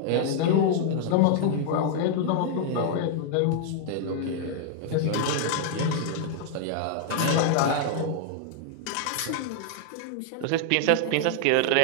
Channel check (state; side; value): different; both; correlation -0.01